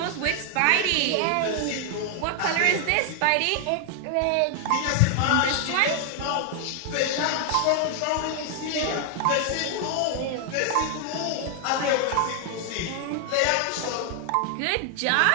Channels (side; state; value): both; different; correlation 0.00